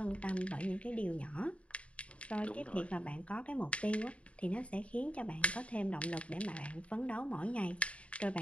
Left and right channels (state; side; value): late; right; 0.062 ms